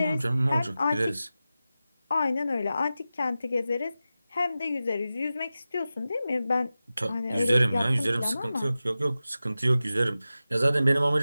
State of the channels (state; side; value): inverted; both; correlation -0.94